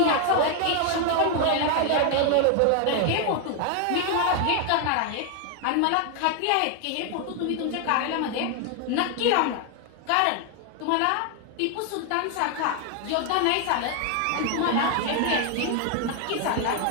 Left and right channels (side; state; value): both; different; correlation 0.00